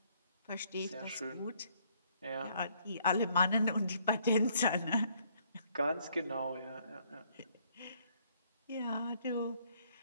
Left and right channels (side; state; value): both; inverted; correlation -0.67